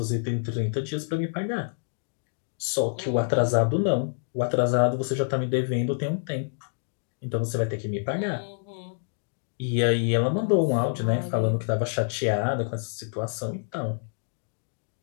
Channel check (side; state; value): right; silent; digital silence